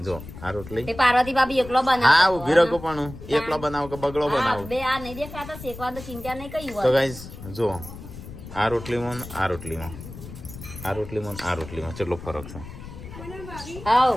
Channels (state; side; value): noise; left; rumble, 13 dB below the sound